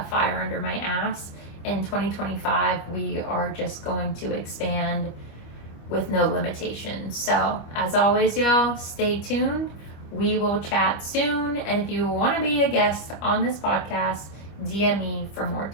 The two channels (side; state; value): right; late; 25 ms